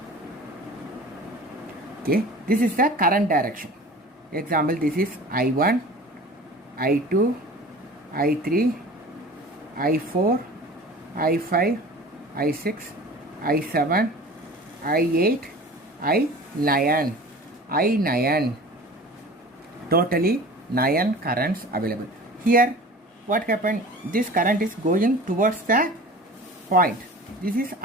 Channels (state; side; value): normal; both; correlation 0.40